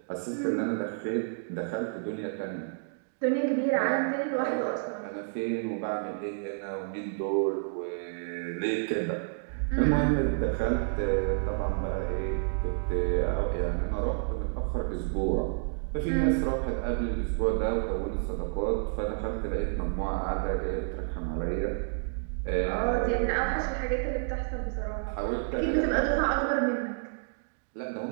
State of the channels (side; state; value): left; silent; digital silence